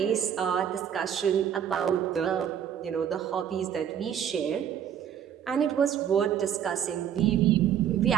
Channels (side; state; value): left; quieter; 9.2 dB